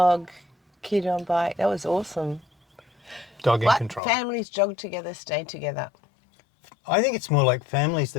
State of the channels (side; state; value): right; drops out; at 4.0 s